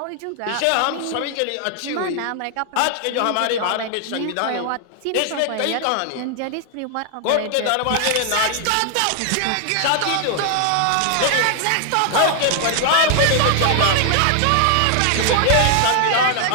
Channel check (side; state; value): both; different; correlation 0.00